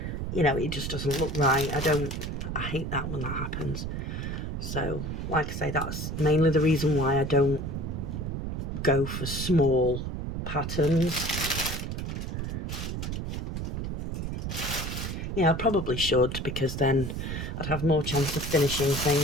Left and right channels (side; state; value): right; noise; rumble, 4 dB below the sound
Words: you know, it just doesn't look right. I hate that when that happens. So like I say, that's mainly the reason why I don't go for small patterns. Yeah, I probably should, because then I'd have more chance of finishing